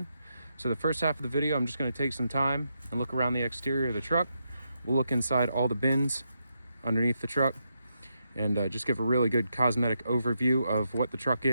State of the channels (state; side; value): inverted; both; correlation -0.83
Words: So the first half of the video, I'm just going to take some time and look around the exterior of the truck. We'll look inside all the bins underneath the truck and just give a really good cosmetic overview of what the truck